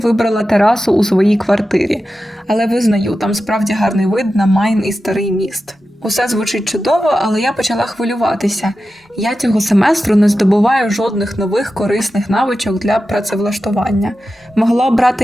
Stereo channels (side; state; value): both; normal; correlation 0.92